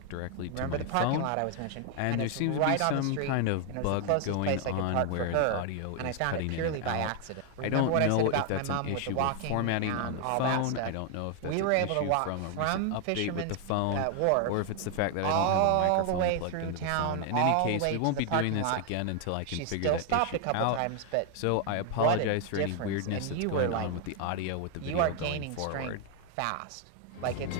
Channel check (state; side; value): different; both; correlation 0.00